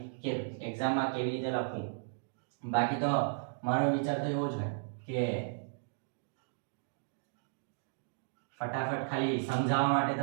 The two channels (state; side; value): silent; left; digital silence